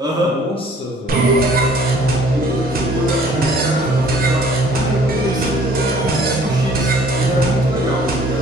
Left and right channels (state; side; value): normal; both; correlation 0.56